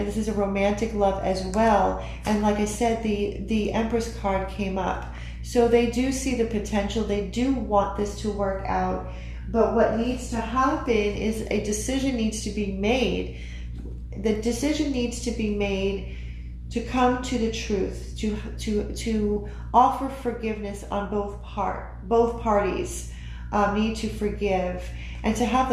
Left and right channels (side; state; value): both; identical; correlation 1.00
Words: This is a romantic love as well. And like I said, the Empress card came up. So they do see the potential. They do want this to work out. But what needs to happen is a decision needs to be made. The decision needs to be made to come to the truth, to offer forgiveness on both parties need to forgive, and to have